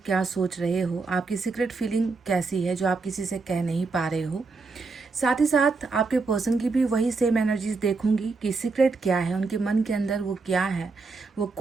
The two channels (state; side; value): quieter; left; 4.1 dB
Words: क्या सोच रहे हो, आपकी सीक्रेट फीलिंग कैसी है जो आप किसी से कह नहीं पा रहे हो। साथ ही साथ आपके पर्सन की भी वही सेम एनर्जीज देखूंगी कि सीक्रेट क्या है, उनके मन के अंदर वो क्या है, वो